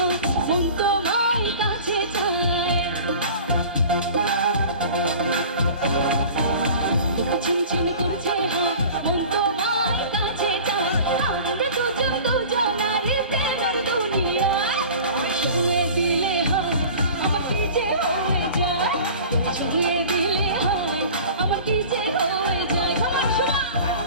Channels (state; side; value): inverted; both; correlation -0.40